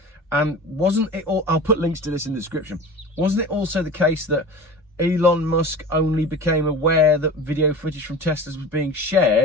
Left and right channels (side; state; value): both; normal; correlation 0.36